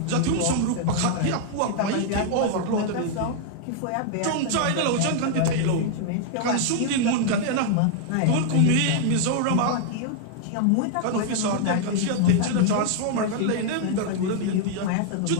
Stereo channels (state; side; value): different; both; correlation 0.00